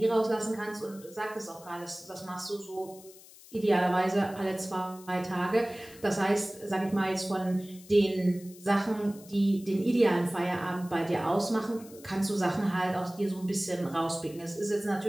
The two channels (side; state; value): left; noise; hiss, 21 dB below the sound